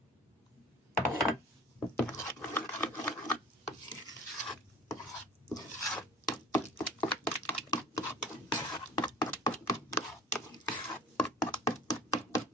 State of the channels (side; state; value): both; normal; correlation 0.44